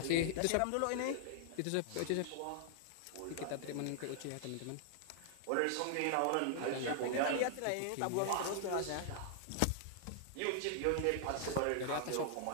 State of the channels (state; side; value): different; both; correlation -0.01